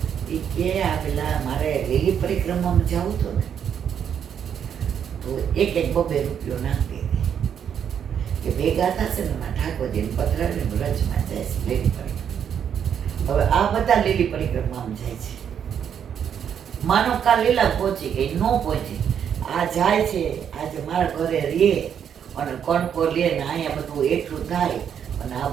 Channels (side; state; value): left; quieter; 8.4 dB